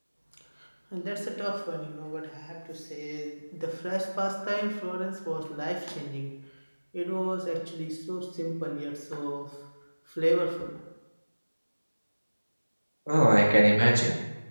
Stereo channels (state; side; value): inverted; both; correlation -1.00